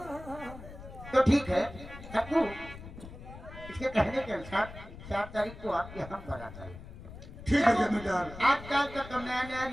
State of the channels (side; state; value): left; noise; rumble, 14 dB below the sound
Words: तो ठीक है सबको। इसके कहने के अनुसार 4 तारीख को आपके हम बरात आए। ठीक है जमींदार। आजकल का तो नया नया